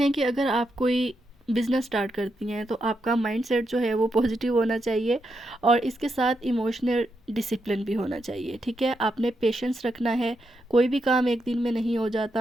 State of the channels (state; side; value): normal; both; correlation 0.83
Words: कि अगर आप कोई बिज़नेस स्टार्ट करती हैं तो आपका माइंडसेट जो है वो पॉजिटिव होना चाहिए, और इसके साथ इमोशनल डिसिप्लिन भी होना चाहिए, ठीक है। आपने पेशेंस रखना है, कोई भी काम एक दिन में नहीं हो